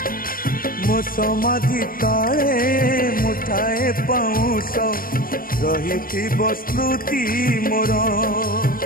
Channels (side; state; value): right; late; 0.42 ms